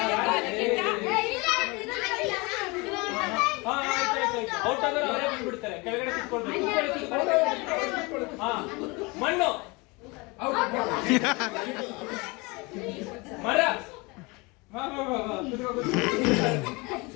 ಔಟ್ ಆದ್ರೆ ಅವರೇ ಬಂದ್ಬಿಡ್ತಾರೆ, ಕೆಳಗಡೆ ಕುತ್ಕೊಳ್ಬೇಕು. ಮಣ್ಣು, ಮರ,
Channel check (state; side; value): quieter; right; 26.4 dB